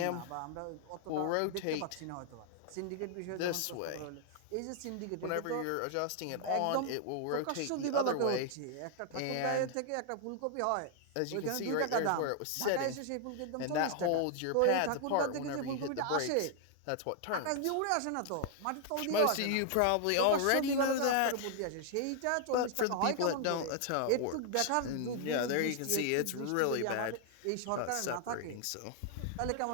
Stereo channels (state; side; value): different; both; correlation 0.00